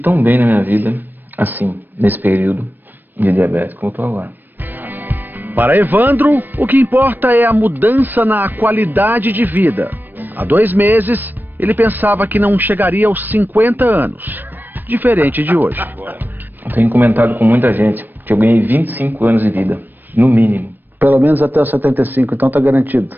bem na minha vida, assim, nesse período de diabetes como eu estou agora. Para Evandro, o que importa é a mudança na qualidade de vida. Há 2 meses, ele pensava que não chegaria aos 50 anos, diferente de hoje. Eu tenho comentado com muita gente que eu ganhei 25 anos de vida, no mínimo. Pelo menos até os 75, então tá garantido?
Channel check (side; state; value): left; late; 0.092 ms